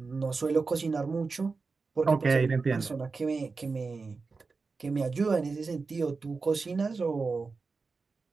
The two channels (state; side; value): quieter; left; 4.3 dB